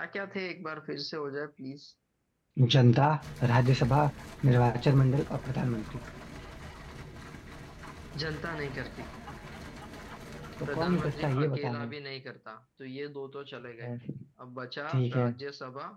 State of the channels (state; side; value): identical; both; correlation 1.00